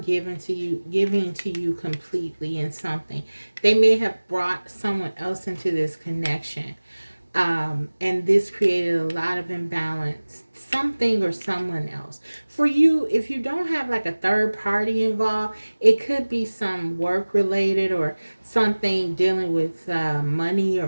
giving to you completely in something. They may have brought someone else into this connection. And this created a lot of imbalance, something or someone else. For you, if you don't have like a third party involved, it could be some work related or something dealing with money or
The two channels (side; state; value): both; inverted; correlation -1.00